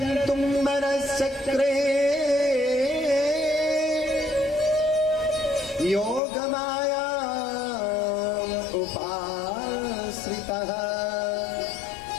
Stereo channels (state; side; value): drops out; right; at 6.2 s